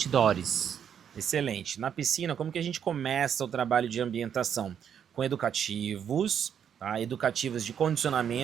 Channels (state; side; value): quieter; left; 8.4 dB